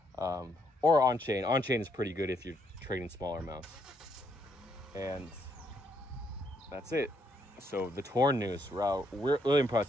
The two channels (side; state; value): both; normal; correlation 0.73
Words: Or on-chain. On-chain is pretty good if you're trading smaller amounts. And that's it. So the Torn news, wow, we're really